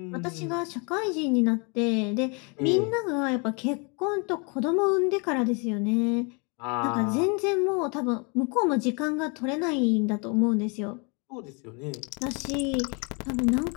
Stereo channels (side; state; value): right; quieter; 32.8 dB